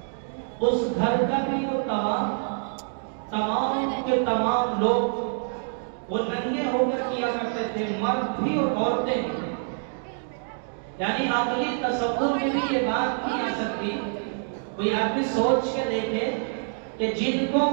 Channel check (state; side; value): silent; left; digital silence